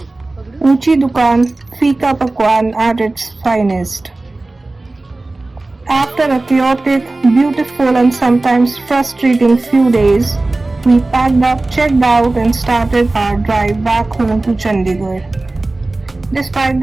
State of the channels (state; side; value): quieter; left; 3.0 dB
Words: Uchi Dukan, Fika Pakwan at its finest. After a chaotic, beautiful and sometimes frustrating few days, we packed up, checked out and started our drive back home to Chandigarh. Despite